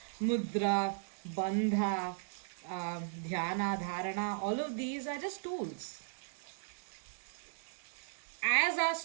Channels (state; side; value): silent; left; digital silence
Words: mudra, bandha, dhyana, dharana, all of these are just tools. As our